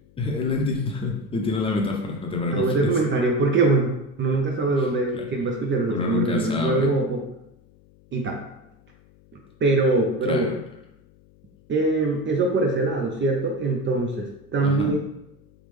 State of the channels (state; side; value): noise; left; hum, 29 dB below the sound